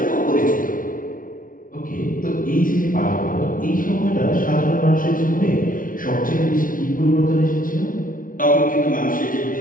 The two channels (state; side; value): late; right; 0.39 ms